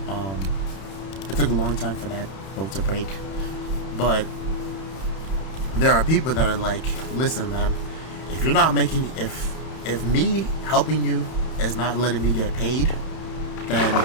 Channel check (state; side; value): late; right; 31 ms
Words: break. But there are people that are like, listen, man, if you're not making, if me helping you is not letting me get paid, then